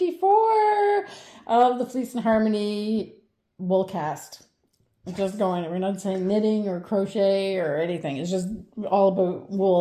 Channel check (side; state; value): both; identical; correlation 1.00